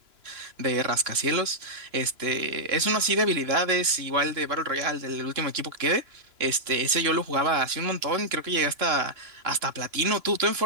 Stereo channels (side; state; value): left; late; 3.0 ms